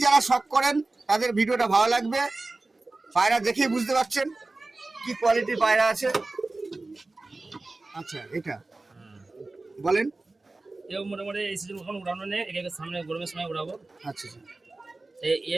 যারা শখ করেন তাদের ভিডিওটা ভালো লাগবে। পায়রা দেখেই বুঝতে পারছেন কি কোয়ালিটির পায়রা আছে। আচ্ছা এটা বলেন। এও মোটামুটি এই সিজন এখন উড়ানো নেই, একে সামনে গরমের সময় উড়াবো। আচ্ছা আচ্ছা।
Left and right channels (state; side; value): quieter; left; 3.2 dB